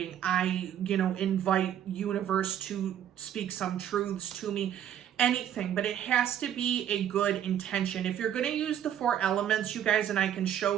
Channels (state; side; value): quieter; left; 10.3 dB